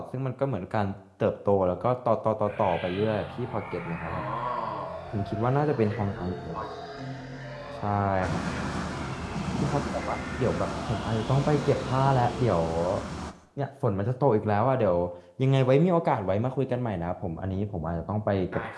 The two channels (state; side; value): identical; both; correlation 1.00